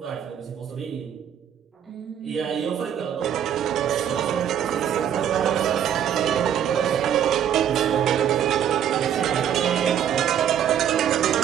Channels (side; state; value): left; quieter; 9.5 dB